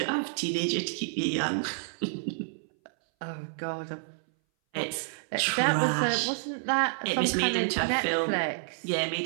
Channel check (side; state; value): left; silent; 58 dB below the other